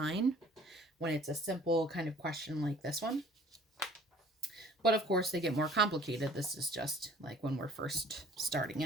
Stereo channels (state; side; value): normal; both; correlation 0.52